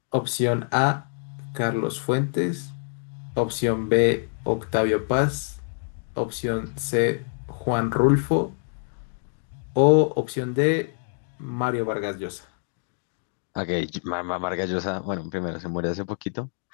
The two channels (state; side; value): silent; right; 61 dB below the other